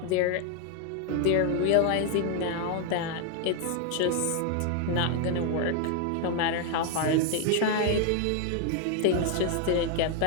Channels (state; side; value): different; both; correlation 0.01